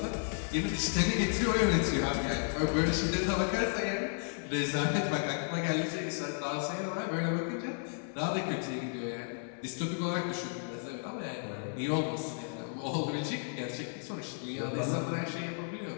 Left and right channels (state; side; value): silent; right; 56 dB below the other